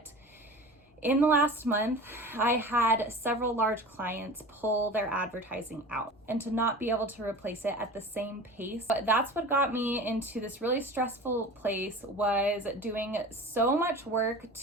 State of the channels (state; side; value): normal; both; correlation 0.36